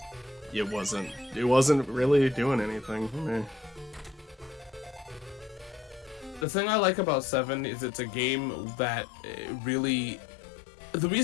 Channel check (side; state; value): right; drops out; at 6.5 s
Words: it wasn't really doing anything for me. The thing I like about 7 is it's a game that really... The